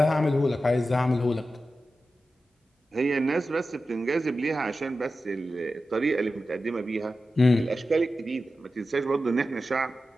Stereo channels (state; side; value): normal; both; correlation 0.92